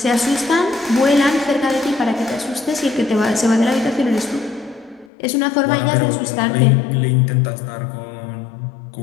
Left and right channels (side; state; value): right; drops out; at 5.1 s